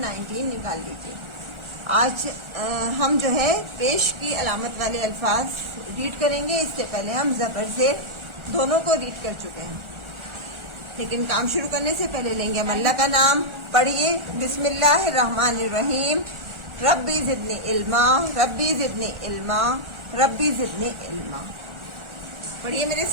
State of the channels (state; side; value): late; left; 1.4 ms